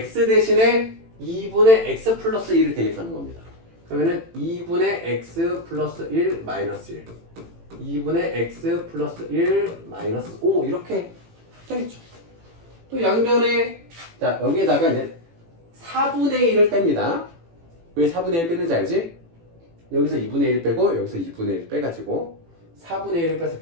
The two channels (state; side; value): late; left; 18 ms